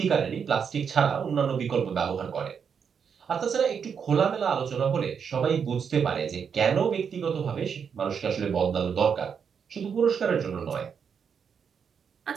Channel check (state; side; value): quieter; left; 6.8 dB